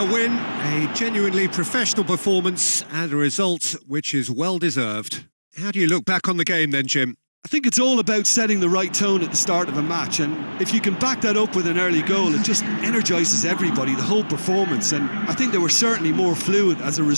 win, a genuinely professional performance and a result which is well deserved. How do you look back on the game then, Jim? I think it's all about setting the right tone at the start of a match, and if you can back that up with an early goal, it just energises everybody, the whole performance, and I think they were certainly more fluid as a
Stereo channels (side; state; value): both; inverted; correlation -1.00